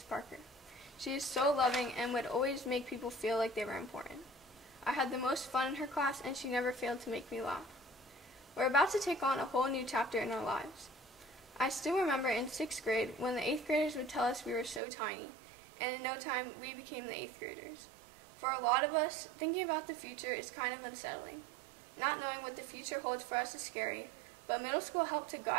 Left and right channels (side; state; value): left; drops out; at 14.8 s